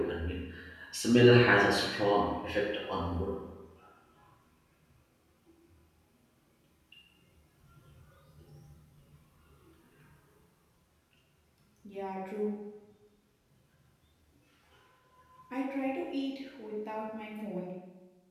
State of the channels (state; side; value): identical; both; correlation 1.00